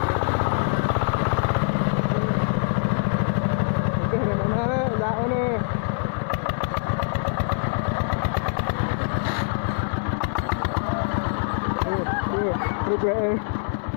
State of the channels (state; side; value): silent; right; digital silence